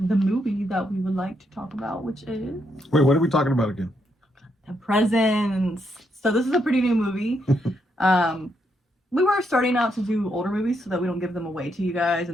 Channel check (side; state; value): both; normal; correlation 0.78